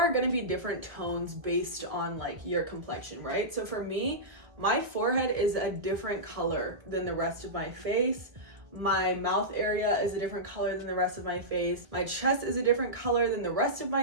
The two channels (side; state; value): left; late; 1.5 ms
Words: going to be different tones based on like your complexion, right? So for me, my forehead is a different color than the rest of my face. My mouth area is a different color than the rest of my face. My chest is a different color than the rest of